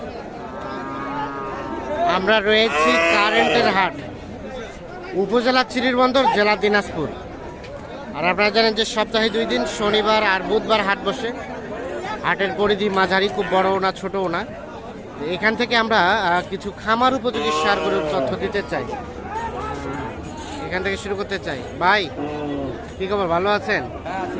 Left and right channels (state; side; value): identical; both; correlation 1.00